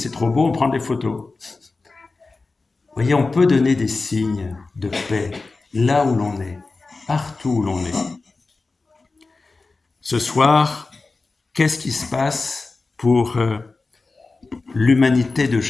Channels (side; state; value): right; quieter; 3.7 dB